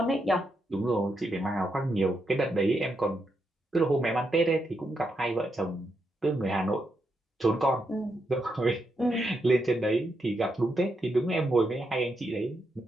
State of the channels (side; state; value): both; normal; correlation 0.82